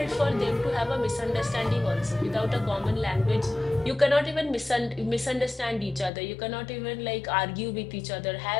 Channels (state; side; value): drops out; right; at 6.1 s